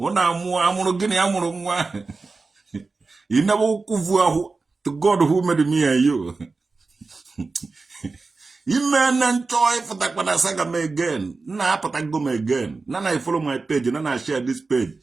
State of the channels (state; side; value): quieter; left; 3.9 dB